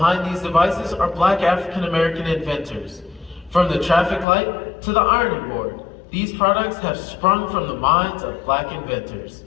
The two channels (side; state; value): right; drops out; at 4.2 s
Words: these devices are Black African American inventors. From the traffic light to the ironing board, these products have sprung from the minds of Black inventors.